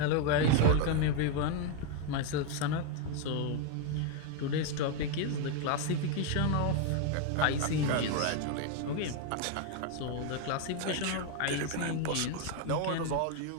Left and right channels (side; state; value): both; different; correlation 0.01